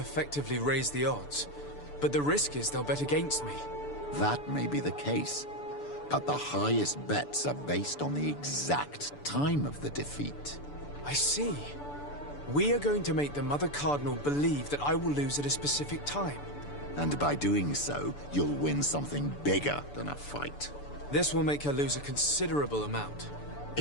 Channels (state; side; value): late; right; 6.9 ms